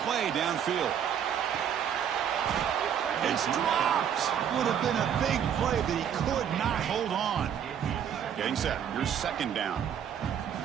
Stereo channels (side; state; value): left; quieter; 8.7 dB